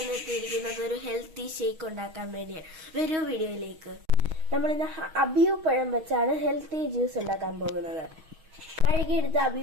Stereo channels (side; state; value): left; late; 6.3 ms